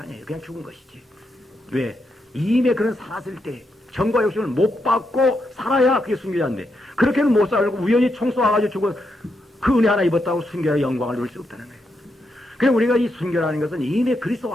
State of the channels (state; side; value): normal; both; correlation 0.82